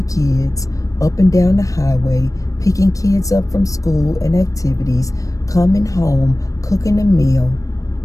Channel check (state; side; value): late; right; 0.16 ms